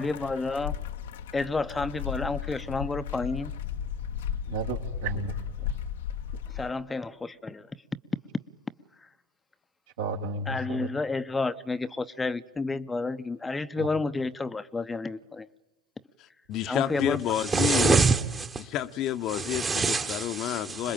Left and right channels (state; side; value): normal; both; correlation 0.65